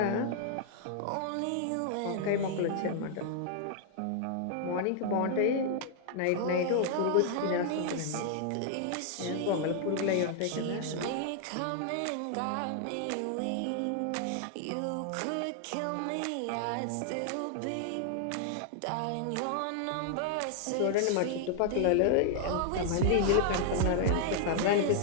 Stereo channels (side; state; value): both; different; correlation 0.00